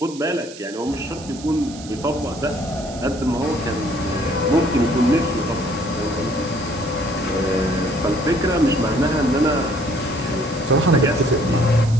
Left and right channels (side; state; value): right; noise; hiss, 17 dB below the sound